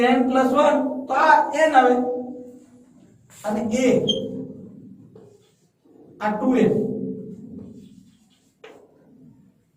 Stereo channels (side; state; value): both; identical; correlation 1.00